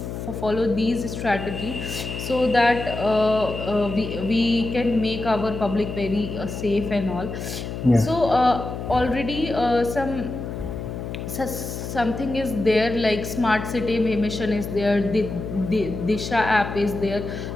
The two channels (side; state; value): left; noise; hum, 7 dB below the sound